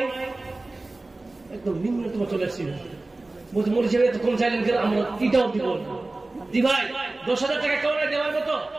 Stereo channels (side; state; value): left; quieter; 3.1 dB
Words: একদম নিম্নতম চলে আসছি। বলছে মরিচের এত কম চাইলেন কেন? আমরা কিটাও দিব। জি ভাই 10,000 টাকা কেউ নাই দেওয়ার মতো?